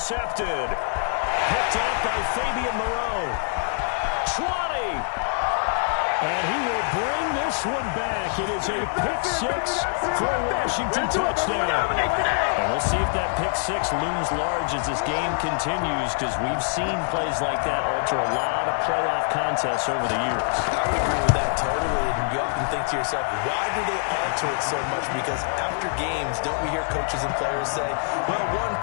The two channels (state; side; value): silent; right; 62 dB below the other